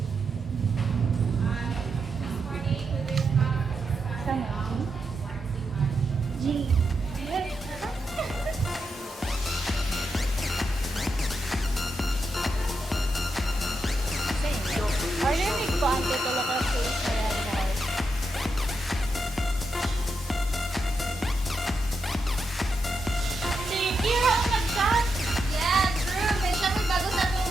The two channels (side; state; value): both; normal; correlation 0.85